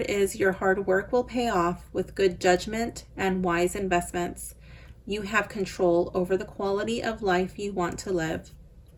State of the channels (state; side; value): identical; both; correlation 1.00